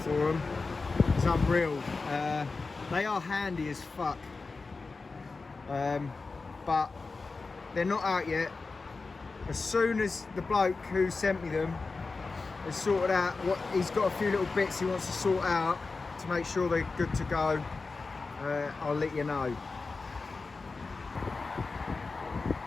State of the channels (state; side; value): quieter; right; 4.0 dB